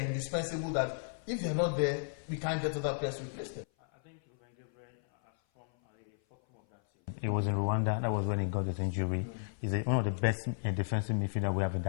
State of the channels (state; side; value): silent; right; 55 dB below the other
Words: indispensable that if they are not there, we can't get other players to replace them? He was in Rwanda. That was when he got his injury. He's one of the best defensive midfielder we have in